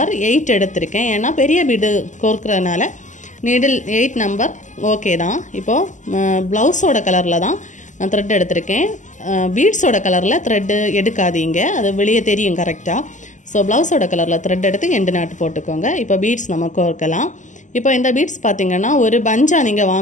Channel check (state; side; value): late; right; 0.36 ms